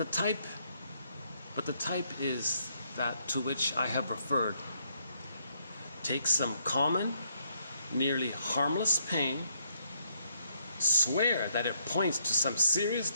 type is that to which I have referred. Take some common, nearly harmless pain, swear that it points to some serious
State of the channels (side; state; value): both; inverted; correlation -0.73